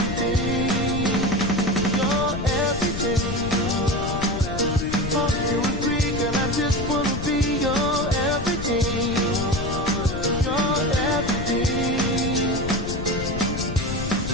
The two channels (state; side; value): noise; left; rumble, 6 dB below the sound